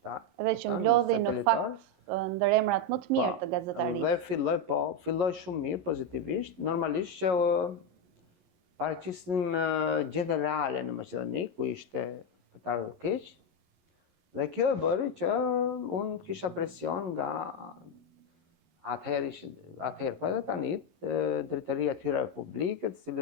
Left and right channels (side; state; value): left; late; 11 ms